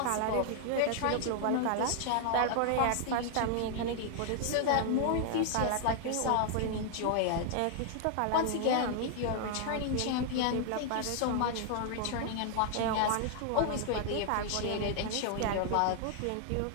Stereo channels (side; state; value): both; different; correlation 0.00